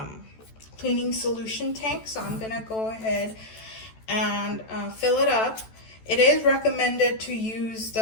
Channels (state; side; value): late; right; 14 ms